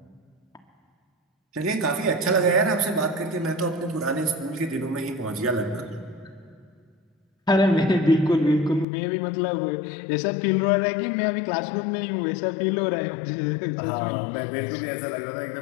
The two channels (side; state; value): right; drops out; at 8.8 s